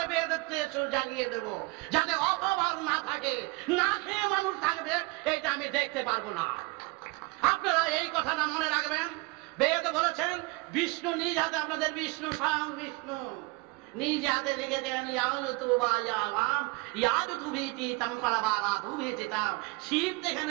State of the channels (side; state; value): left; quieter; 25.2 dB